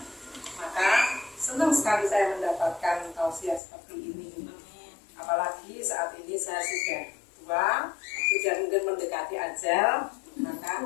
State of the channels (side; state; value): right; drops out; at 3.6 s